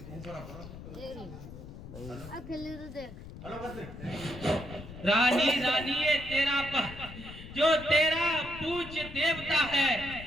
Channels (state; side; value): noise; left; rumble, 13 dB below the sound